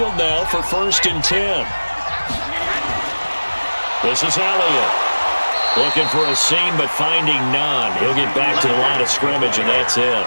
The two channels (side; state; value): both; inverted; correlation -1.00